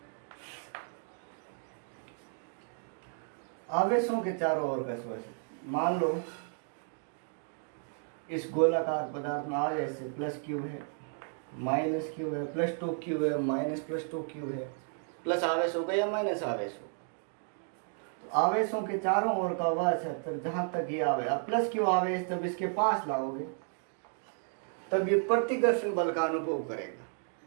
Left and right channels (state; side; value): silent; left; 56 dB below the other